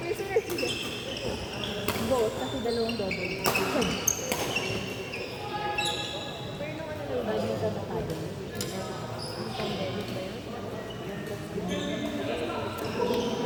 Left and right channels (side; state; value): both; identical; correlation 1.00